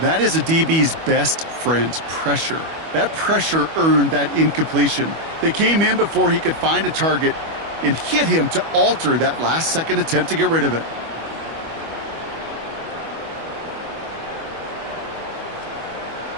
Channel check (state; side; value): late; left; 25 ms